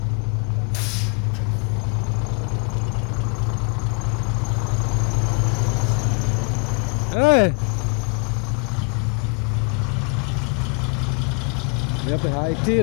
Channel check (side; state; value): right; quieter; 38.8 dB